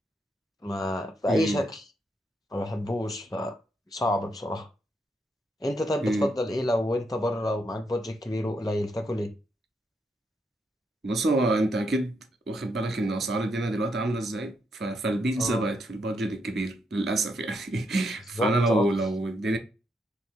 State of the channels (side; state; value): both; normal; correlation 0.79